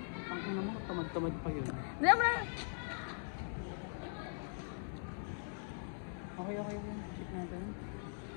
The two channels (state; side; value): silent; right; digital silence